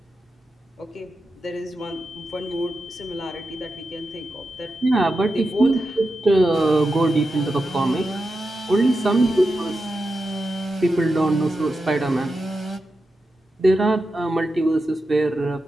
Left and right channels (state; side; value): normal; both; correlation 0.89